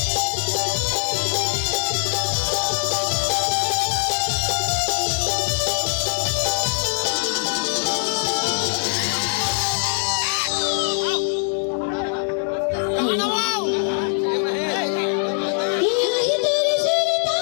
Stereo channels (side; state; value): right; silent; 64 dB below the other